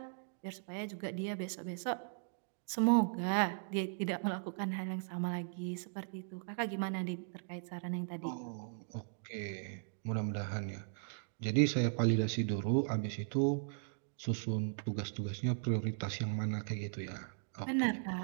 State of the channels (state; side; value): silent; left; digital silence